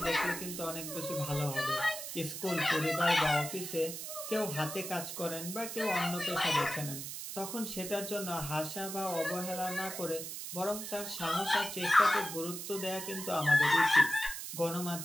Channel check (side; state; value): right; noise; hiss, 7 dB below the sound